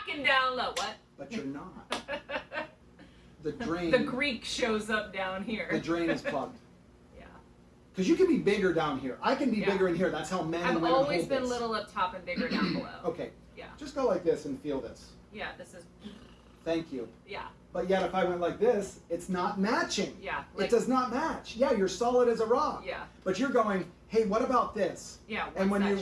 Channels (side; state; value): both; identical; correlation 1.00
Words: down low. What? But you're not. The drain. The Greek shows up down here. The drain is plugged. Yeah. Because you can be bigger down here. I can be Yeah. bigger in here. That's how men and I've women always hold been this. little up top and bigger down below. Okay. Yeah. Just go like this and feel this. Yeah. This is. Thank you. Yeah. But yet if I went like this, it's not matching. Yeah, It like- does not match. Yeah, you're solid as a rock. Yeah. But you're going, hey, what about this? Yeah. And what's